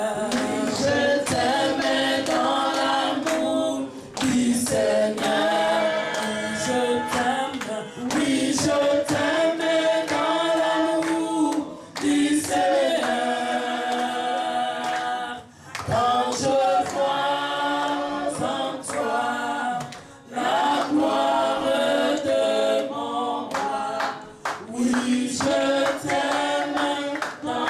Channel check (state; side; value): identical; both; correlation 1.00